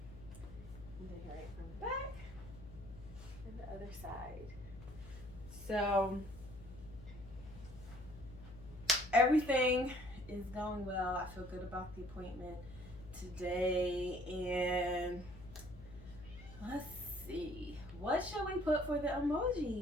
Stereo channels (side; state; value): left; noise; hum, 15 dB below the sound